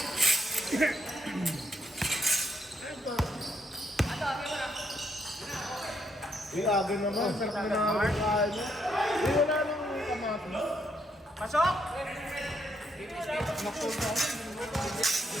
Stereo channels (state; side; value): normal; both; correlation 0.76